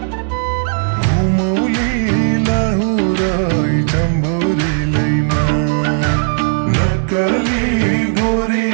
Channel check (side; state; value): left; silent; digital silence